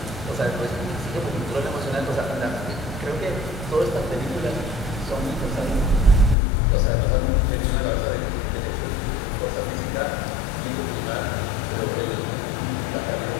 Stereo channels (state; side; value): drops out; right; at 6.4 s